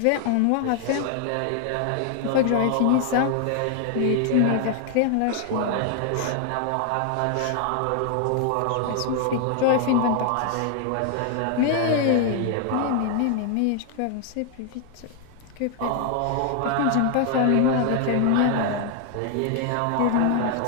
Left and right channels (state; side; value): different; both; correlation 0.00